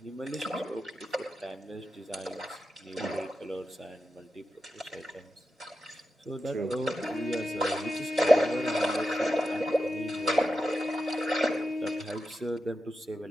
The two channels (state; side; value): normal; both; correlation 0.89